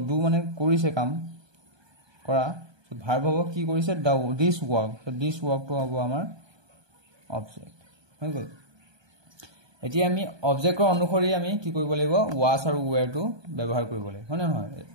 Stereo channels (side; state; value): left; late; 1.2 ms